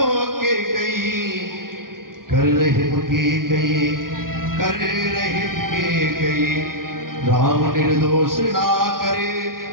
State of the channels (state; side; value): late; left; 0.92 ms